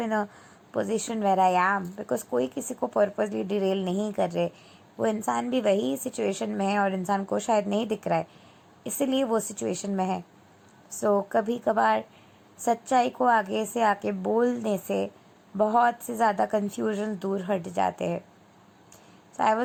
in a position where I am, because कोई किसी को पर्पजली डिरेल नहीं कर रहे. वो इंसान भी वही सिचुएशन में है और इंसान को शायद नहीं दिख रहा है, इसीलिए वो सिचुएशन में है. सो कभी कभार सच्चाई को आगे से आके बोलने से बहुत से ज़्यादा कन्फ्यूजन दूर हट जाते हैं. So I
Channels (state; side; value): identical; both; correlation 1.00